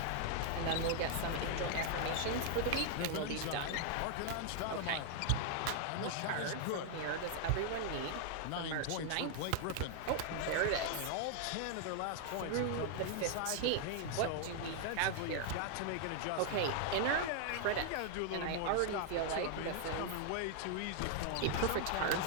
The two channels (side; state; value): both; different; correlation 0.00